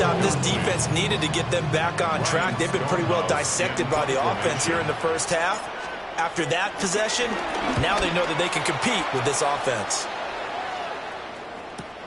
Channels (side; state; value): both; identical; correlation 1.00